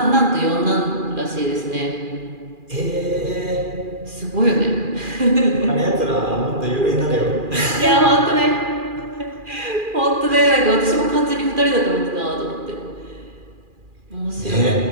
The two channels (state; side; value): late; left; 2.4 ms